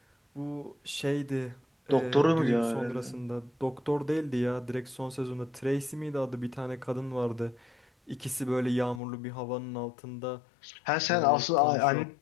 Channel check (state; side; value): drops out; right; at 9.0 s